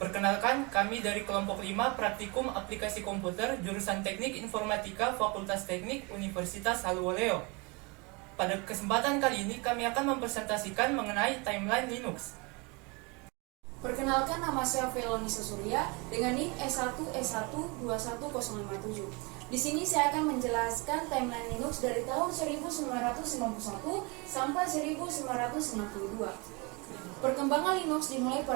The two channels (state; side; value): quieter; left; 28.8 dB